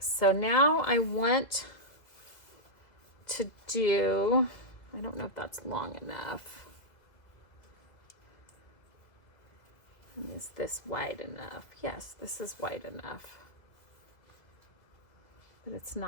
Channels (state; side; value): late; right; 2.1 ms